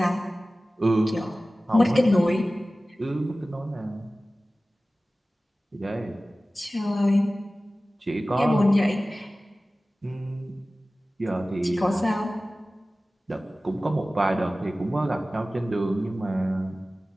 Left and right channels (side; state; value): both; normal; correlation 0.97